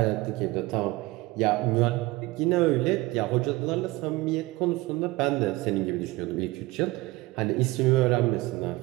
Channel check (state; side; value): quieter; left; 20.6 dB